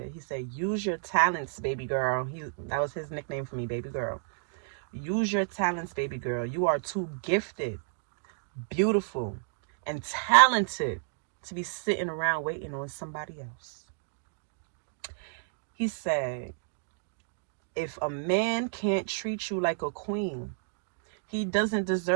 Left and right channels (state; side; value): silent; left; digital silence